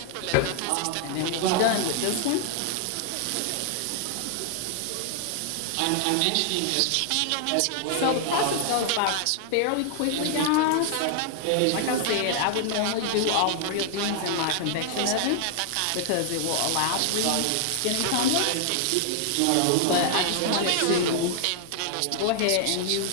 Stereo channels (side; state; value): both; different; correlation 0.00